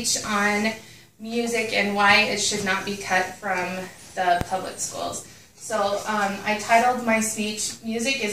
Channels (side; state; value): both; identical; correlation 1.00